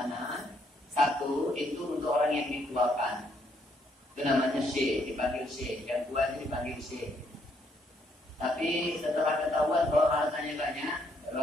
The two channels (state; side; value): normal; both; correlation 0.71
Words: satu itu untuk orang yang dituakan. Itu namanya syekh, dipanggil syekh, yang tua itu dipanggil syekh. Tapi setelah ketahuan bahwa hartanya banyak, baru